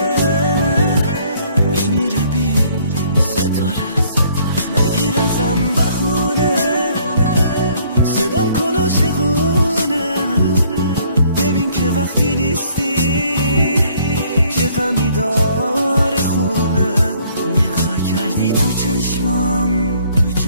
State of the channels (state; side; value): inverted; both; correlation -0.61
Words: میمیره بی ستاره. نگیر ازم بخونه، صدام کلاشقونه. ببین که وقتی نیستی چه غمی داره خونه. نگاه کردی تو چشمام،